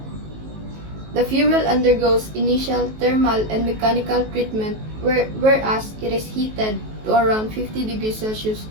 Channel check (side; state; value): left; late; 19 ms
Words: the fuel undergoes initial thermal and mechanical treatment whereas it is heated to around 50 degrees Celsius